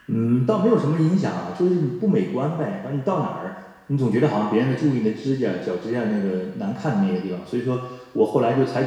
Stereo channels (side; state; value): both; identical; correlation 1.00